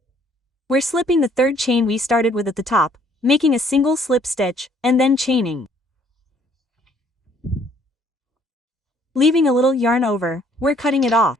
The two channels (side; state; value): both; normal; correlation 0.62